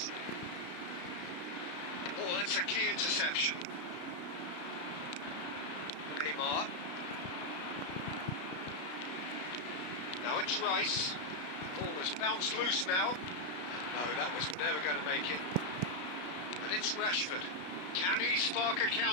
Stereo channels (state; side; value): late; right; 33 ms